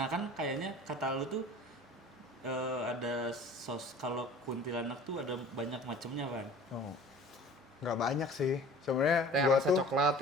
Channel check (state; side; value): normal; both; correlation 0.45